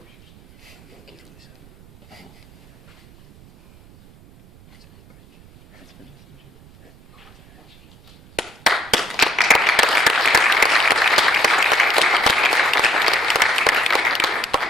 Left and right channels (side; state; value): right; noise; rumble, 25 dB below the sound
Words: Oh. That's finished.